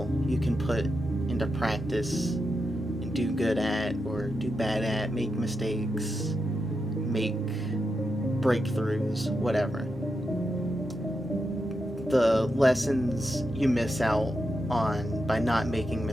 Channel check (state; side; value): normal; both; correlation 0.87